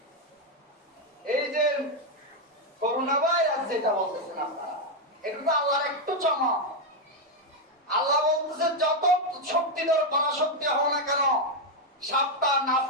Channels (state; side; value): normal; both; correlation 0.03